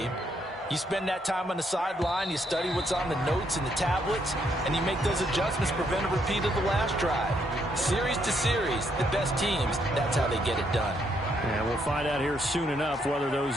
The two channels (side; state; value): both; normal; correlation 0.73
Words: You spend that time on the sideline, you study what's on the notes and the tablets, and you make those adjustments, prevent a repeat of the last drive. Series to series, the best teams, that's how they get it done. And we'll find out here soon enough whether those